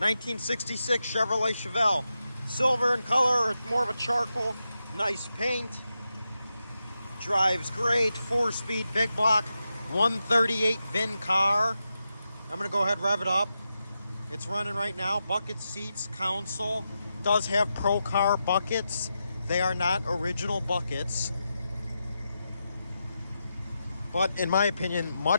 Chevrolet Chevelle. Silver in color, it's more of a charcoal. Nice paint. Drives great. 4-speed big block. 138 VIN car. I'm going to go ahead and rev it up. It's running right now. Bucket seats, console. Does have Pro Car buckets. They are not original buckets, but in my opinion,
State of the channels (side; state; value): both; inverted; correlation -0.88